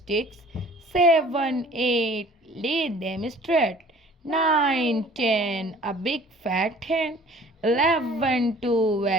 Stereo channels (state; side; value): normal; both; correlation 0.50